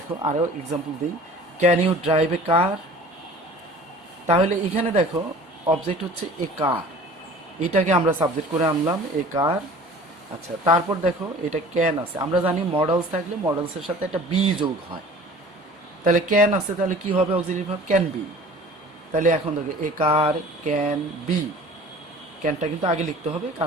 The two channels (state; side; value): normal; both; correlation 0.45